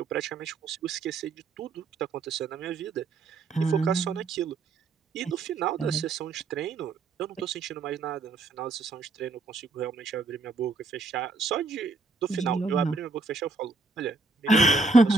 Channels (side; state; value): left; quieter; 3.6 dB